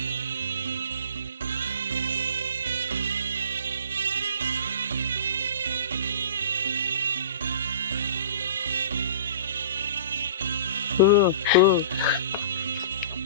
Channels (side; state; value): both; inverted; correlation -0.41